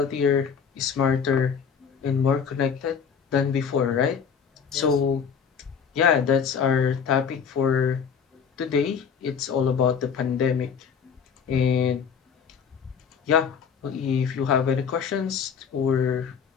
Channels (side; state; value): right; quieter; 6.8 dB